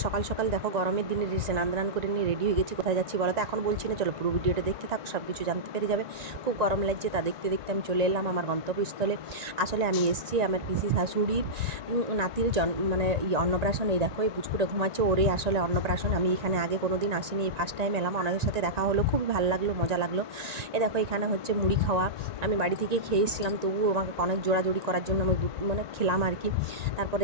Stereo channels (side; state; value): left; late; 1.9 ms